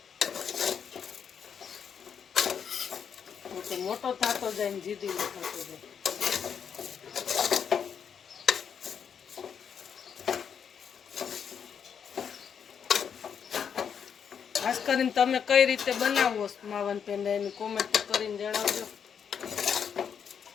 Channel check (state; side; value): quieter; right; 7.4 dB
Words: તો મોટો થતો જાય ને જીદી થતો જાય. ખાસ કરીને તમે કઈ રીતે બનાવો માવન પેંડા એની કોમેન્ટ કરીને જણાવજો.